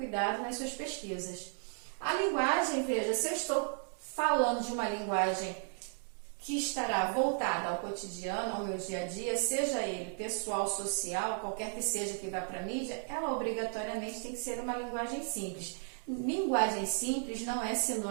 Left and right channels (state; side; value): silent; left; 55 dB below the other